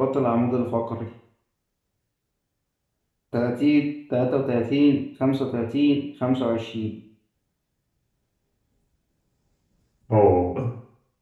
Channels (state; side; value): identical; both; correlation 1.00